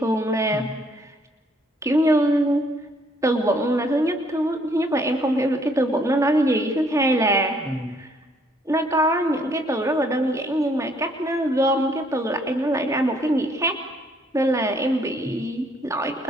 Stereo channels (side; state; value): both; normal; correlation 0.66